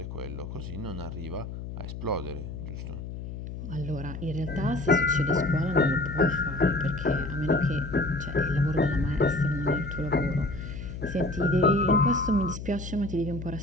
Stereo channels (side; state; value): left; noise; hum, 8 dB below the sound